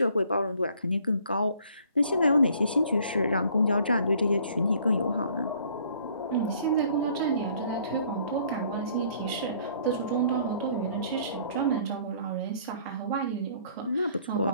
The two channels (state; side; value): inverted; both; correlation -0.58